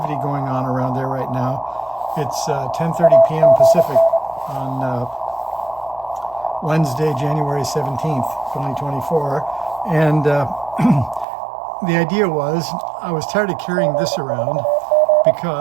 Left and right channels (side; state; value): left; drops out; at 11.2 s